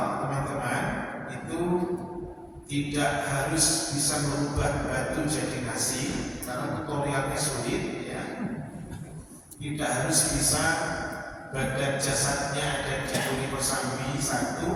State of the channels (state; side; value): identical; both; correlation 1.00